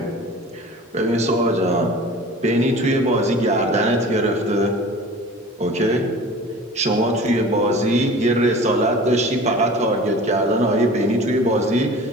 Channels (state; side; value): normal; both; correlation 0.41